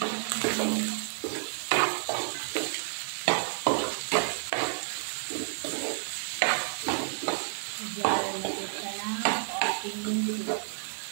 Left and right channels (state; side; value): silent; left; digital silence